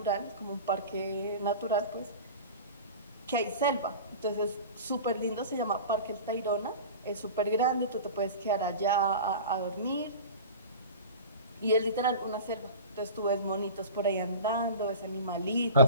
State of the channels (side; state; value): both; inverted; correlation -0.34